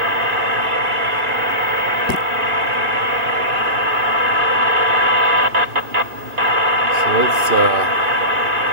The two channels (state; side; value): late; left; 2.6 ms